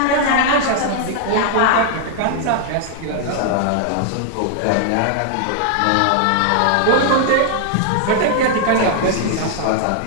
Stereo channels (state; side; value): different; both; correlation 0.00